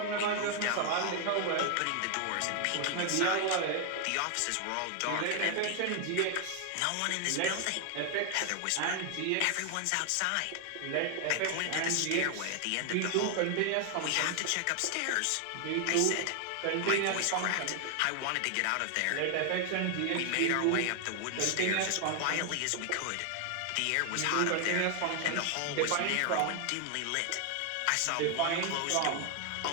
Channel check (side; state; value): both; different; correlation 0.00